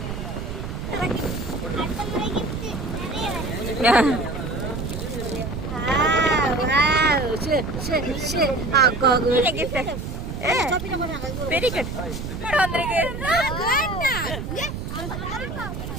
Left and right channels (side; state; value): right; noise; rumble, 6 dB below the sound